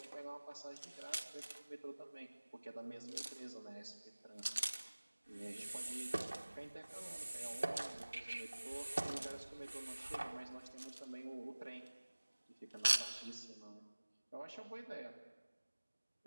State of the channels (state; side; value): inverted; both; correlation -1.00